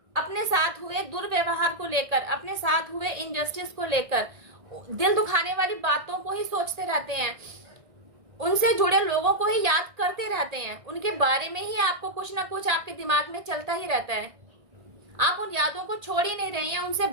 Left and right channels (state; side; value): late; left; 1.6 ms